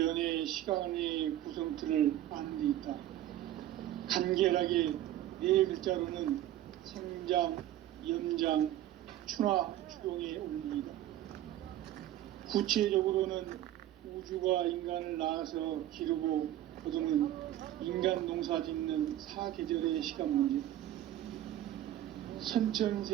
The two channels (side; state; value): left; quieter; 13.1 dB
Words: 시간의 구성틀을 아는 데 있다. 간결하게 네 글자로는 생장, 염장, 추나 추동의 원리이다. 구체적으로는 우주가 인간을 낳아서 기르고 거두는 인간 농사 짓는 사계절의 시간 문제. 선천